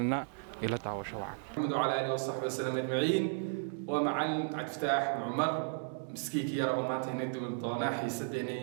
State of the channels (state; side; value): silent; left; digital silence